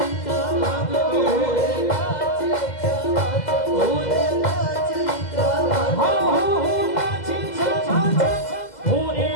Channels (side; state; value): right; late; 2.0 ms